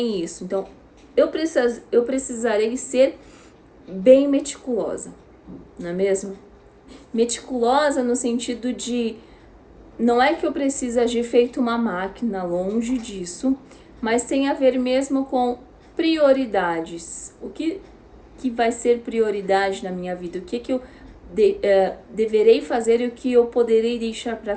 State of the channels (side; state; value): both; identical; correlation 1.00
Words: isso. Então, eu precisarei ser bem meticulosa, não é mesmo? Meticulosa no sentido de, não é que eu preciso agir feito uma máquina, longe disso, mas tem a ver mesmo com prioridades. O que vai ser prioridade na minha vida? O que eu deverei fazer e o que eu poderei deixar para